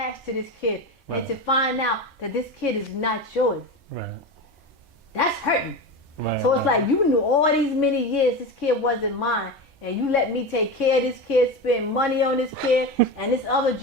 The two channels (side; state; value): both; normal; correlation 0.23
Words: to this kid. And Right. to find out that this kid is not yours, Right. that's hurting. Right. So it's like you knew all these many years this kid wasn't mine. And you let me take care of this kid, spend money on this kid, and this other